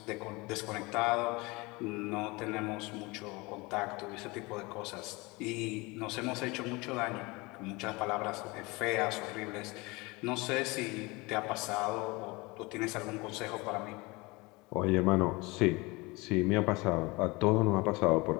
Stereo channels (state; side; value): quieter; right; 24.5 dB